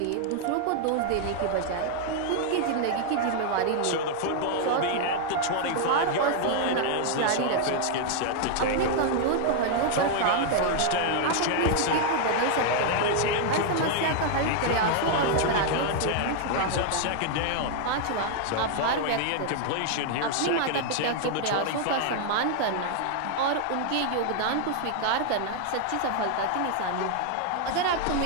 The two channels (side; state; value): both; different; correlation 0.00